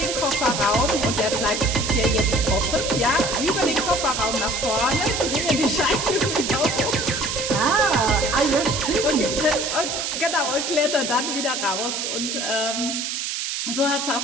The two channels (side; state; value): right; noise; hiss, 3 dB below the sound